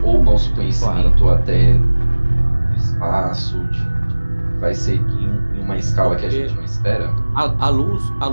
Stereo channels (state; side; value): inverted; both; correlation -1.00